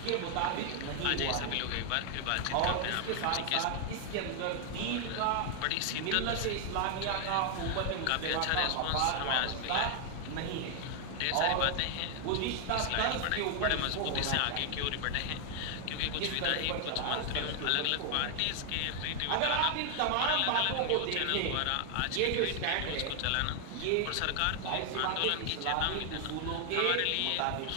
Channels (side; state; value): both; different; correlation 0.00